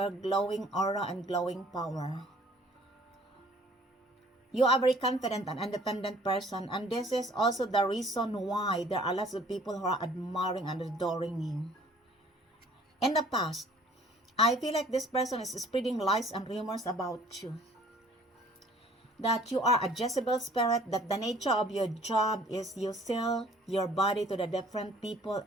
glowing aura and glowing power. You are a very confident and independent person, and this is also the reason why there are lots of people who are admiring and adoring you. In the past, I feel like this person is spreading lies and rumors about you. That you are a Jezebel spirit, that the nature of your job is you sell your body to the different people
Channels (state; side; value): normal; both; correlation 0.55